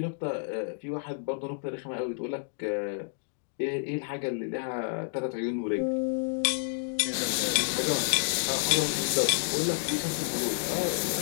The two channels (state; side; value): silent; right; digital silence